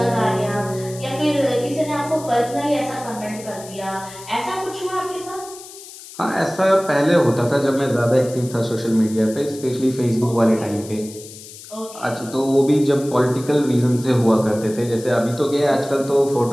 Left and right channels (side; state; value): left; noise; hiss, 16 dB below the sound